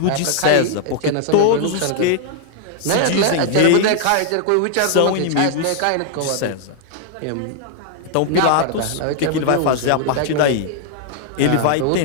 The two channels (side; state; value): both; different; correlation -0.01